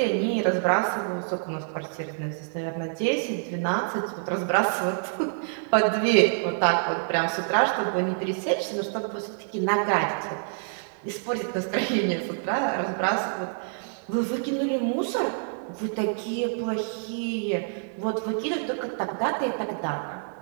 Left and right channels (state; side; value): silent; left; 57 dB below the other